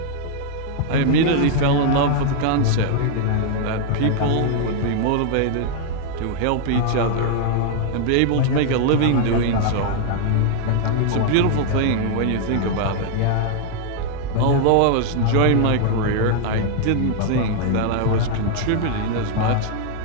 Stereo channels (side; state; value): both; different; correlation 0.00